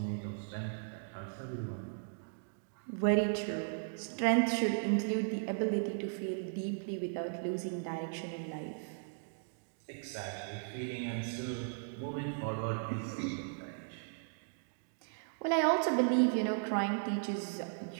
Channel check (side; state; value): left; silent; digital silence